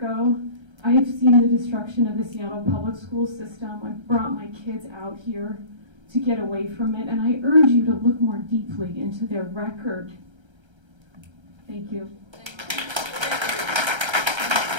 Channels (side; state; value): left; late; 1.3 ms